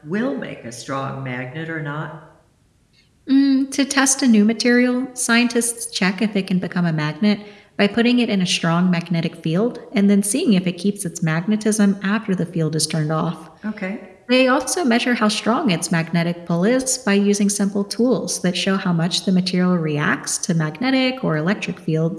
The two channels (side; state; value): both; identical; correlation 1.00